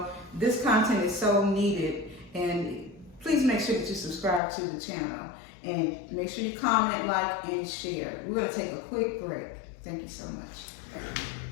this content is so needed, and please make sure that you subscribe to the channel, and make sure you comment, like, and share. We're going to take a quick break. Thank you so much.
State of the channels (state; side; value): drops out; right; at 4.4 s